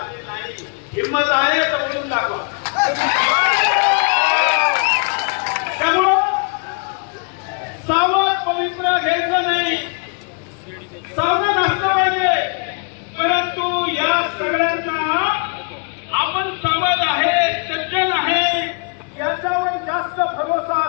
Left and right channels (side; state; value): right; quieter; 37.1 dB